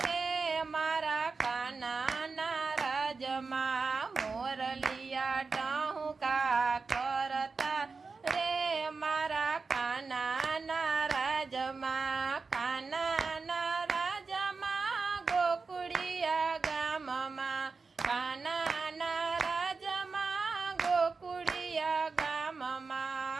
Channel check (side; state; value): left; quieter; 4.4 dB